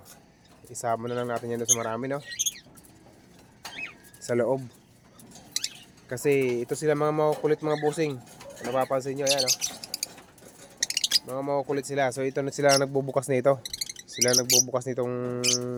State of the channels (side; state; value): both; identical; correlation 1.00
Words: isama na lang natin yan sa marami, no, sa loob. Kasi ito sila mga makukulit mga busing. Napapansin nyo, yan, no? Mga makukulit sila. So ito na sila nagbubukas nito. Sila nagbubukas nitong